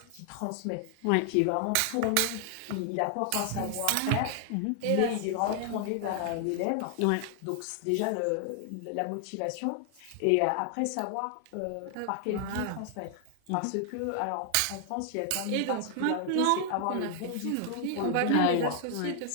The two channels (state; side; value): different; both; correlation 0.00